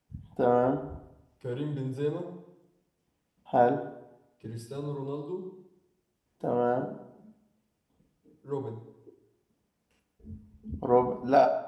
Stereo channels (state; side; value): identical; both; correlation 1.00